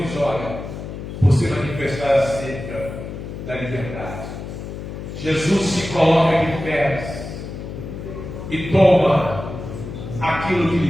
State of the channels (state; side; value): noise; left; hum, 9 dB below the sound